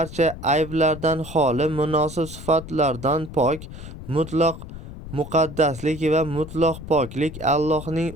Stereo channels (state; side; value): noise; left; rumble, 13 dB below the sound